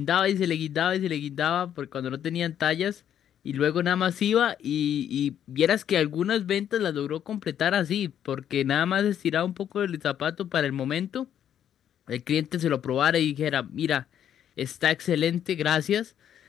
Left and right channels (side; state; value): right; quieter; 9.8 dB